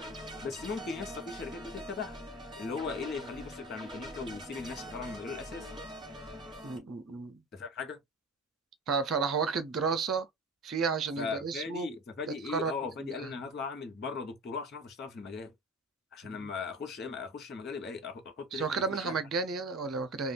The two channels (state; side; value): normal; both; correlation 0.34